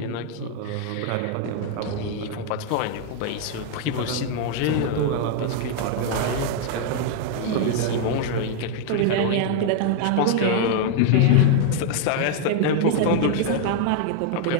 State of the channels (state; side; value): different; both; correlation 0.00